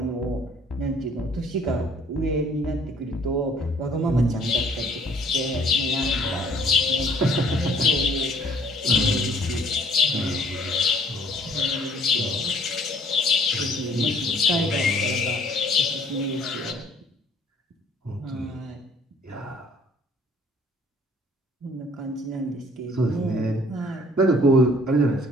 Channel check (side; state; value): both; normal; correlation 0.58